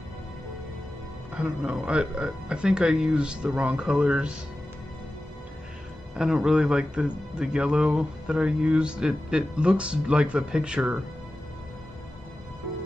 I don't know. I think I used the wrong colors. I don't really like the yellow that I used. It looks like the picture,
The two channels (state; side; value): normal; both; correlation 0.94